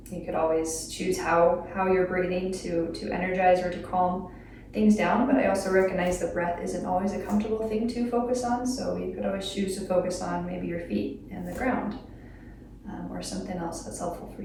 you could always choose how you're breathing to energize or to calm things down, but I also recognize the breath isn't always a comfortable thing to focus on, so you could always choose to focus on maybe your feet and the ground, or something else that's helpful for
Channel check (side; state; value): both; identical; correlation 1.00